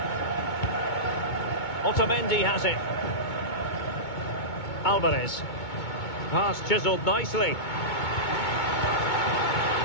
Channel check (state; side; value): late; right; 2.2 ms